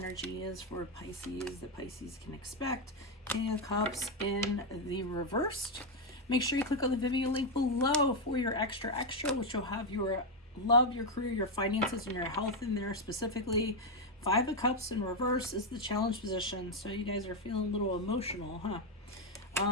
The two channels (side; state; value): both; normal; correlation 0.03